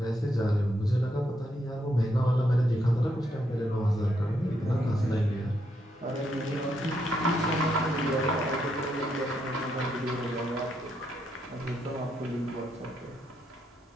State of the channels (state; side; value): normal; both; correlation 0.78